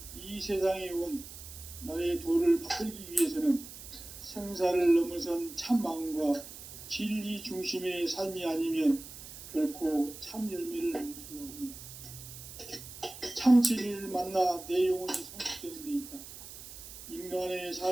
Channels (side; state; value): right; noise; hiss, 14 dB below the sound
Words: 이 세상에 온 나의 도를 받들기 위해서는 생사를 넘어선 참 마음과 진리 중심의 삶이 아니면 결코 참 열매를 낼 수가 없노라. 참 진리를 만나 내 영혼이 성숙되는 데 있다. 인간의